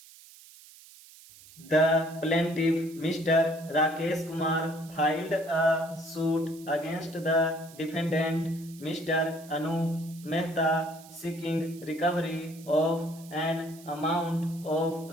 The plaintiff, Mr. Rakesh Kumar, filed a suit against the defendant, Mr. Anup Mehta, seeking recovery of an amount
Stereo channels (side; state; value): right; noise; hiss, 21 dB below the sound